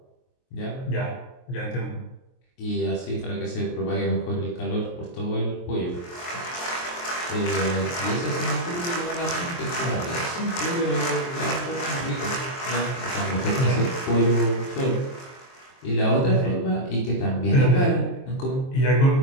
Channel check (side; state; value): right; late; 23 ms